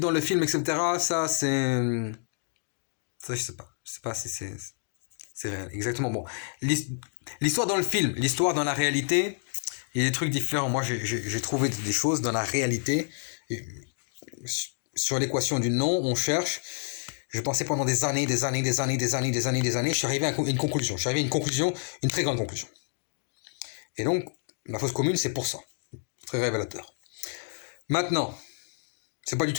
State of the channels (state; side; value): silent; right; digital silence